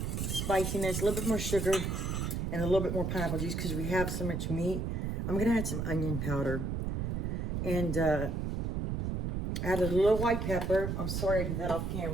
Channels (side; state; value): right; noise; rumble, 1 dB below the sound